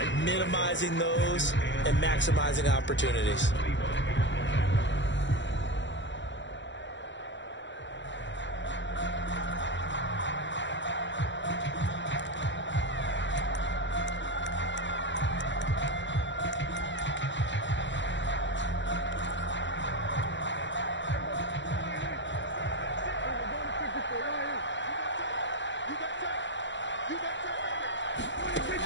Minimizing those and maximizing opportunities.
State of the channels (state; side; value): late; right; 0.54 ms